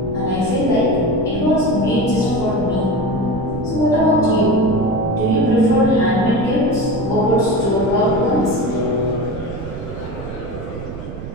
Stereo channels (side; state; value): right; noise; rumble, 10 dB below the sound